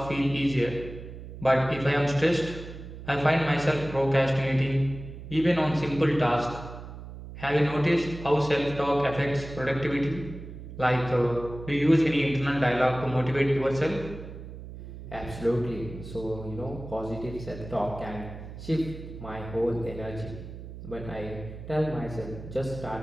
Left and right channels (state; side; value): noise; right; hum, 12 dB below the sound